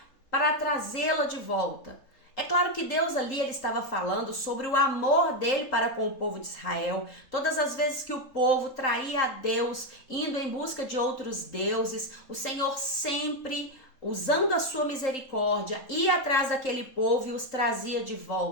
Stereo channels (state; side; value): late; right; 3.8 ms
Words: para trazê-la de volta. É claro que Deus ali ele estava falando sobre o amor dele para com o povo de Israel. Todas as vezes que o povo traía a Deus, indo em busca de outros deuses, o Senhor sempre, usando a sua misericórdia, ia atrás daquele povo e os trazia de